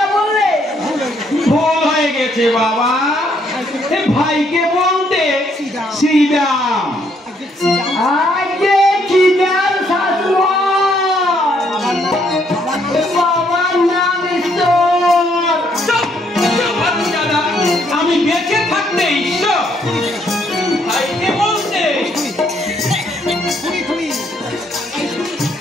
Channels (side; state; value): both; normal; correlation 0.70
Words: বললে? ভুল হয়ে গেছে বাবা, ভাইকে বলতে শ্রীরাম। আজকে চিদার শাশুড় বাবার নাম ঈশ্বর। আমি বেঁচে থাকতে ঈশ্বর ভাইকে বলতে?